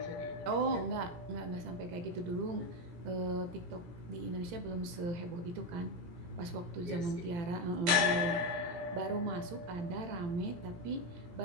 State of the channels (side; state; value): left; late; 17 ms